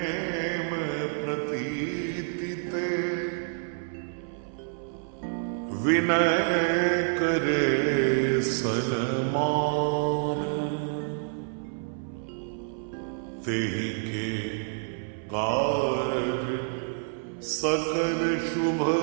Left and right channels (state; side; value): silent; left; 58 dB below the other